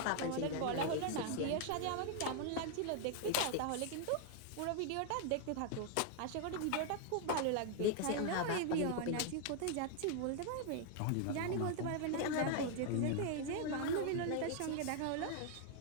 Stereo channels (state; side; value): different; both; correlation 0.00